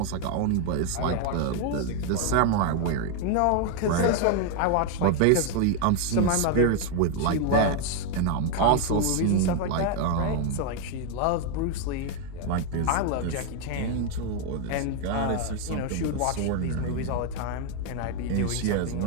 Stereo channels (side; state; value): both; different; correlation 0.01